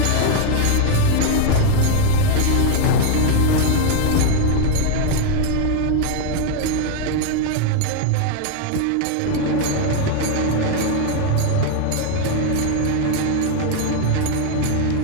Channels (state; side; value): different; both; correlation 0.00